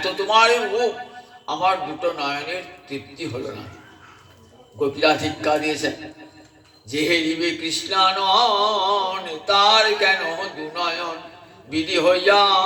তোমার রূপ, আমার দুটো নয়নের তৃপ্তি হলো না। গোপীরা ধিক্কার দিয়েছেন, যে হেরিবে কৃষ্ণানন তার কেন দুনয়ন, বিধি হইয়া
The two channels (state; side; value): identical; both; correlation 1.00